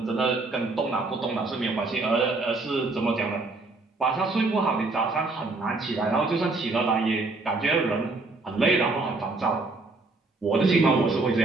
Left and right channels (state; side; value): quieter; left; 3.4 dB